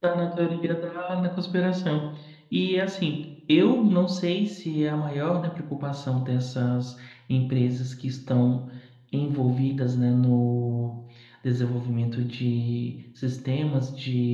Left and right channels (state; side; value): identical; both; correlation 1.00